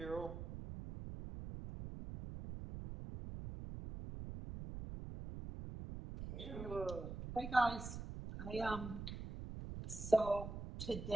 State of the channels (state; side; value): noise; right; rumble, 8 dB below the sound